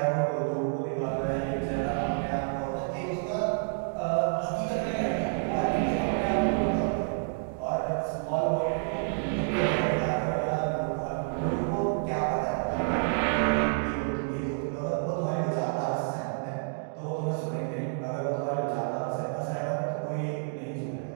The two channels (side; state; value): left; silent; digital silence